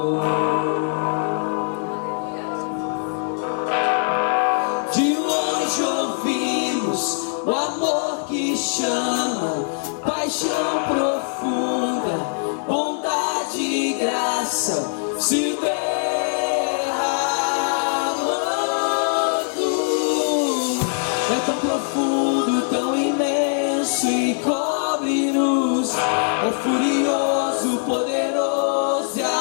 De longe ouvimos o amor que chama, paixão profunda, bondade e graça se derramando. É tão profundo, tão imenso e cobre-nos. É furioso, poderoso e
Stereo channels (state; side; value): silent; right; 64 dB below the other